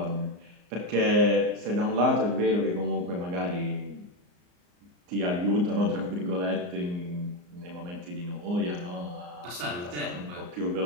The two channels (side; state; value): left; late; 34 ms